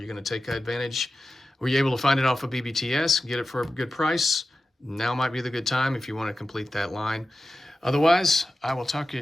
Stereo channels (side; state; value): both; normal; correlation 0.93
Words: going to take advantage? Were you able to find it off of BBTS, get it for a good price? Now might be the good time if you want to complete that line. Otherwise, I will talk